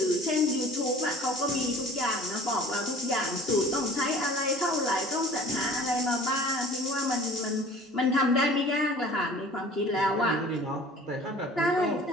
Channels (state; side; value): normal; both; correlation 0.46